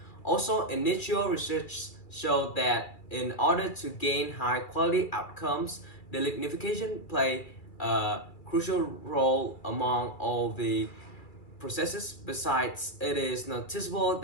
Also, initial research showed that in order to gain high quality outcomes, the lignification play a crucial role among all the processes. Besides, it is noticeable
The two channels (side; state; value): right; late; 2.3 ms